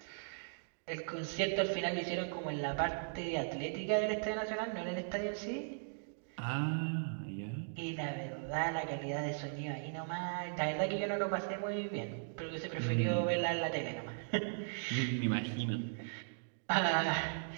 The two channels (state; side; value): silent; left; digital silence